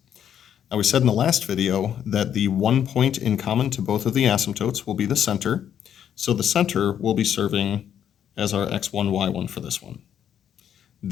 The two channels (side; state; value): right; quieter; 9.3 dB